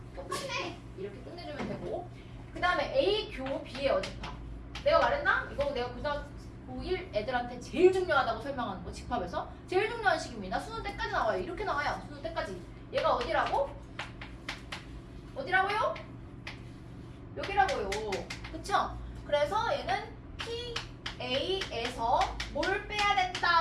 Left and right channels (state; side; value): identical; both; correlation 1.00